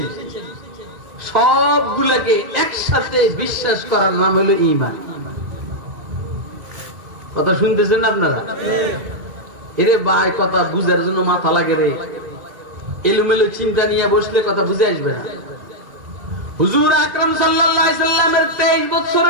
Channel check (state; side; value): late; left; 1.9 ms